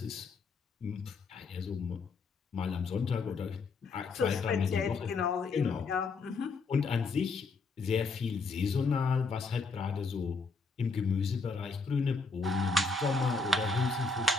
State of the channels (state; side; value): quieter; right; 4.2 dB